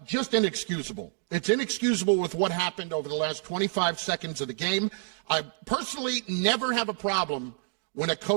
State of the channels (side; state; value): left; silent; digital silence